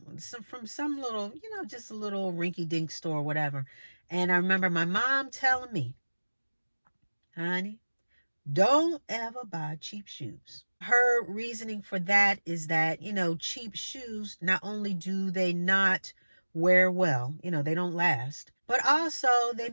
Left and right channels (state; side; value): inverted; both; correlation -1.00